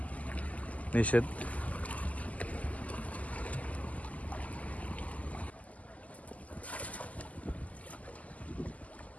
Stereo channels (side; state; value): right; late; 0.073 ms